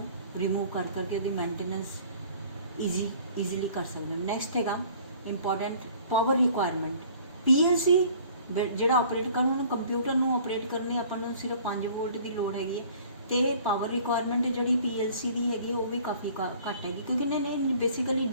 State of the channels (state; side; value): inverted; both; correlation -0.51